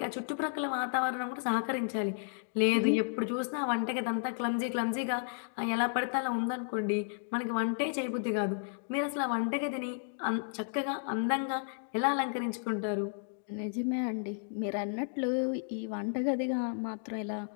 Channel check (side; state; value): right; silent; digital silence